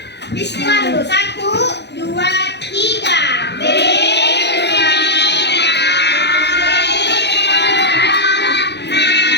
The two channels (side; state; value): right; late; 0.50 ms